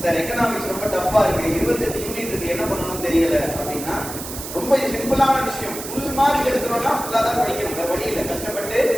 சார் எக்கனாமிக்ஸ் ரொம்ப டஃப்பா இருக்கு, 28 யூனிட் இருக்கு, என்ன பண்ணணும்னு தெரியல அப்படின்னா ரொம்ப சிம்பிளான விஷயம். ஃபுல் மார்க் எடுக்கிறோம்னா ஃபுல்லாக தான் படிக்கணும். வேற வழி இல்லை. கஷ்டப்பட்டு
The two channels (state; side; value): noise; right; hiss, 9 dB below the sound